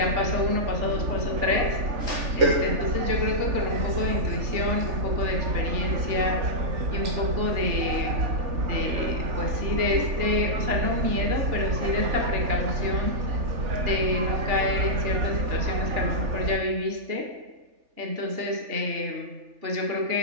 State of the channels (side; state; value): left; late; 3.4 ms